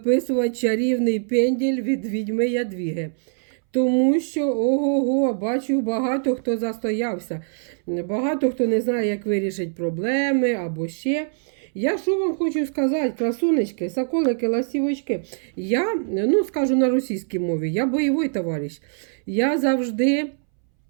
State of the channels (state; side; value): silent; left; 62 dB below the other